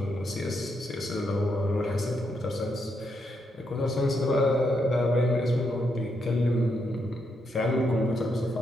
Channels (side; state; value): both; normal; correlation 0.80